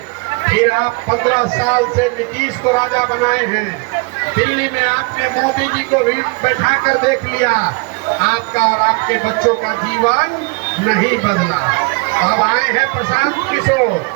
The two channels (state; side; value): quieter; left; 30.2 dB